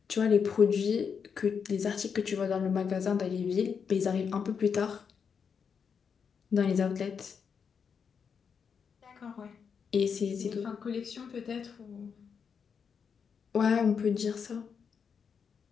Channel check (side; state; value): right; quieter; 6.5 dB